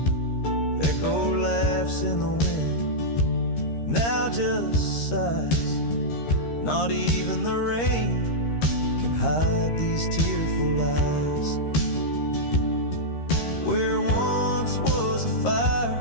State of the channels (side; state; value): right; late; 13 ms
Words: Echo laughs in the wind, now just sighs. Not even the rain can hide these tearful eyes. Where once was a fire,